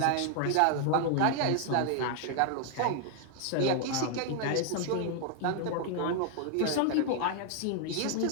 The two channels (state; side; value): different; both; correlation 0.00